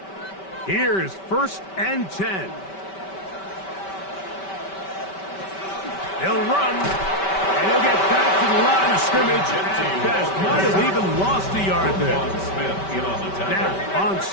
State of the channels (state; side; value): late; right; 5.2 ms